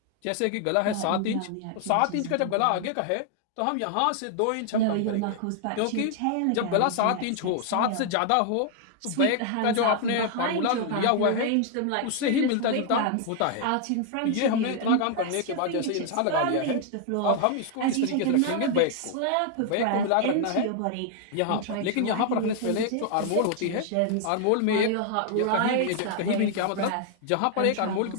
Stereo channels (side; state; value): both; different; correlation 0.00